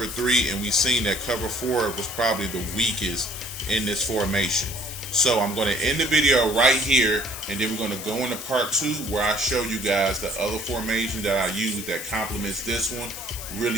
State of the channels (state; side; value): noise; left; hiss, 9 dB below the sound